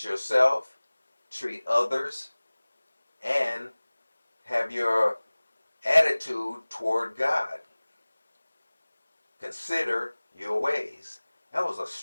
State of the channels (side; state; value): both; inverted; correlation -1.00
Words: yourself, treat others, and have your attitude toward God. Consider your ways. That was a